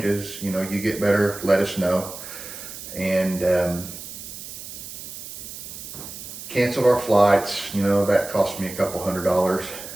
you know, you get better, let us know. And canceled our flights. You know, that cost me a couple $100,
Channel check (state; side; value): noise; right; hiss, 11 dB below the sound